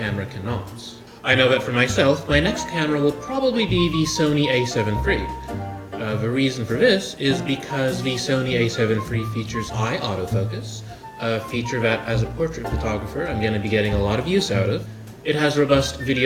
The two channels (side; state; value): both; identical; correlation 1.00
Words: cannot? I know that for myself, my next camera will probably be the Sony a7 III. The reason for this is because the Sony a7 III features eye autofocus, a feature that as a portrait photographer I'm going to be getting a lot of use out of. It has robust